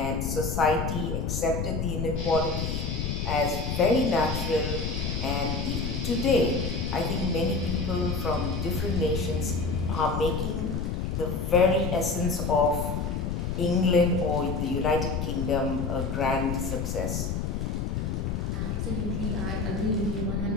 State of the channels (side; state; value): left; noise; rumble, 1 dB below the sound